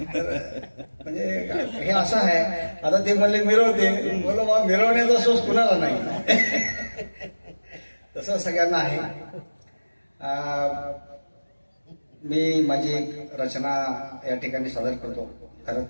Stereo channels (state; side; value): inverted; both; correlation -1.00